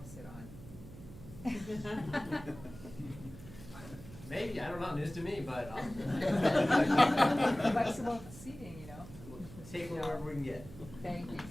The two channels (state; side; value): noise; right; hum, 15 dB below the sound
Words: to sit on. Maybe, I don't know, news to me, but Flexible seating, you know. take whatever we can get. Thank you,